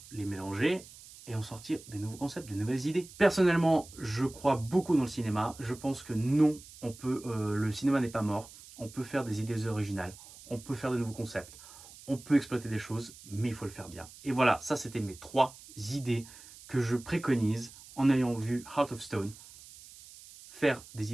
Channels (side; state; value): right; noise; hiss, 19 dB below the sound